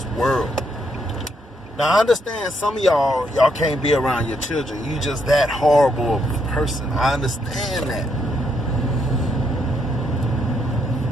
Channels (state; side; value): normal; both; correlation 0.76